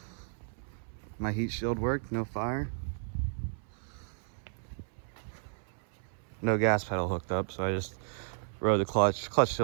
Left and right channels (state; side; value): silent; left; 56 dB below the other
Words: My heat shield worked, no fire. No gas pedal hooked up, so I just rode the clutch. Clutch